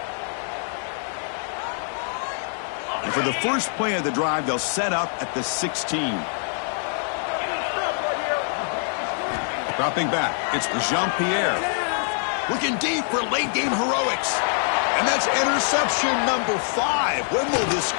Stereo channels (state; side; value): silent; right; 62 dB below the other